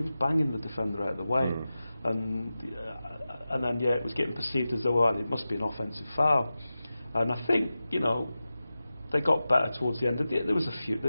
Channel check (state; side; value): inverted; both; correlation -0.94